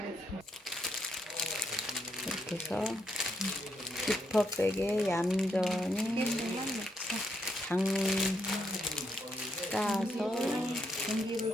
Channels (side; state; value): both; normal; correlation 0.77